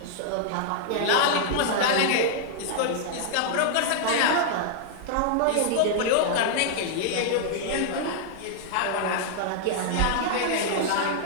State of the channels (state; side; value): different; both; correlation -0.01